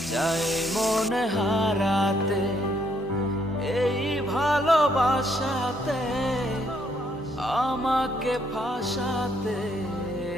চায় মন হারাতে, এই ভালোবাসাতে আমাকে ফাঁসাতে।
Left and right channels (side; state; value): both; normal; correlation 0.71